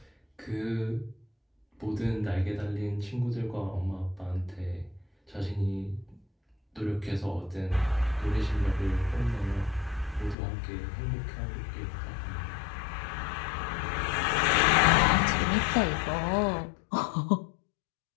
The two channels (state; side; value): drops out; right; at 10.4 s